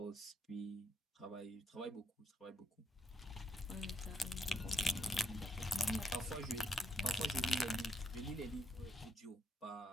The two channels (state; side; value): normal; both; correlation 0.79